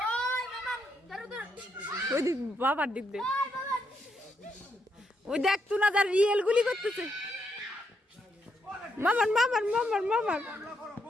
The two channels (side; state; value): both; normal; correlation 0.78